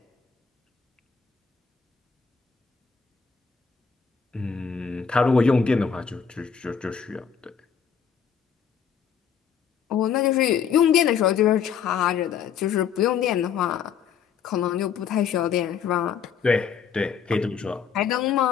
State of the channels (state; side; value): quieter; right; 7.0 dB